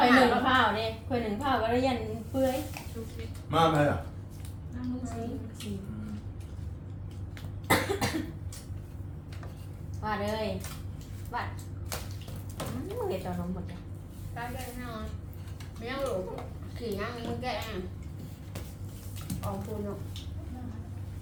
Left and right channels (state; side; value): identical; both; correlation 1.00